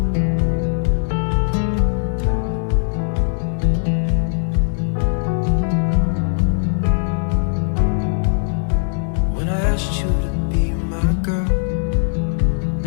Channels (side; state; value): right; silent; digital silence